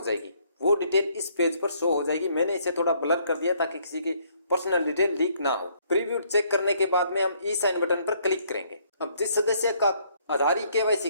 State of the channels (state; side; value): inverted; both; correlation -0.66